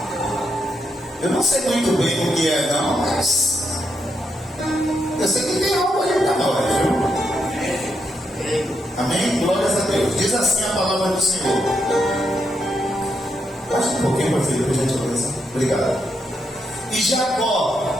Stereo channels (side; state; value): both; normal; correlation 0.81